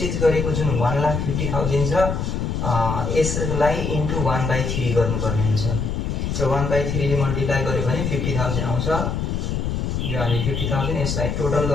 गरेको जुन 1,50,000 छ यसलाई इन्टु 1/3 गर्नुपर्ने हुन्छ। र 1/3 ले मल्टिप्लाई गर्यो भने 50,000 आउँछ। यो हामी 50,000 यसलाई टोटल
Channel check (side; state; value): left; noise; rumble, 1 dB below the sound